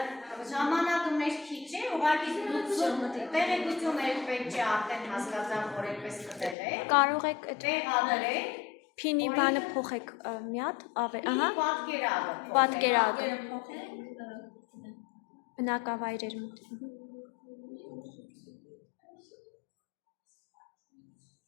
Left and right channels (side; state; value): right; drops out; at 6.6 s